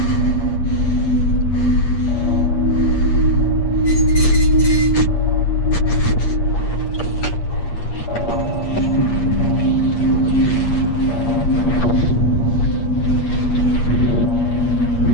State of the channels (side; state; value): right; late; 8.5 ms